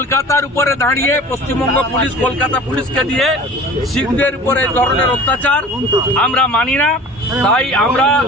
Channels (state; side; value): normal; both; correlation 0.42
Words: উপরে দাঁড়িয়ে পশ্চিমবঙ্গ পুলিশ কলকাতা পুলিশকে দিয়ে শিখদের উপরে এই ধরনের অত্যাচার আমরা মানি না। তাই আমরা